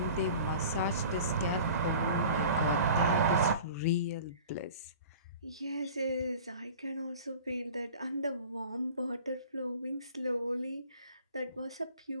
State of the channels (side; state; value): both; inverted; correlation -0.42